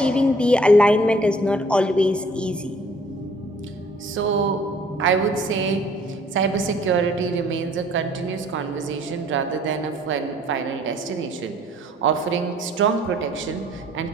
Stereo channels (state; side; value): normal; both; correlation 0.58